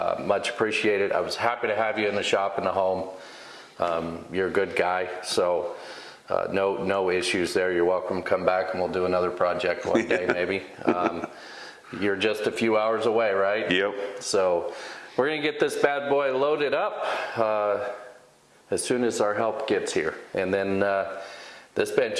Much appreciated. I was happy to have you in the shop and the home. You're a good guy, so no issues there. You're welcome to come back and we'll do another project one day maybe. You're just a few hours away, right? Yep. So we're gonna get this bad boy loaded up as soon as our help gets here. And then this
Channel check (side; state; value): both; identical; correlation 1.00